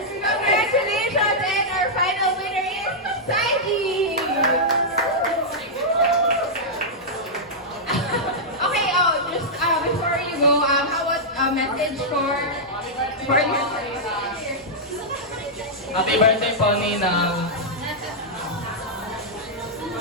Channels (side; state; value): both; normal; correlation -0.09